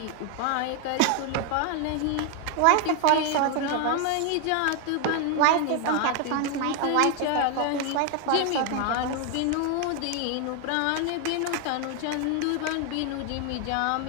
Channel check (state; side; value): different; both; correlation 0.01